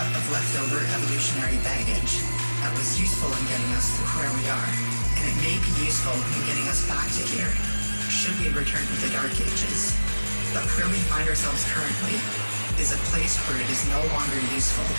of leftover evolutionary baggage that was useful in getting us to where we are, and it may be useful in getting us back to here, should we return to the Dark Ages. But where we find ourselves currently is a place where it is no longer useful.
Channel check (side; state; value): both; inverted; correlation -1.00